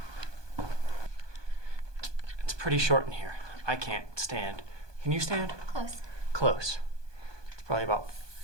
It's pretty short in here. I can't stand. Can you stand? Close. Close. It's probably about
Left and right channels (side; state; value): left; late; 1.2 ms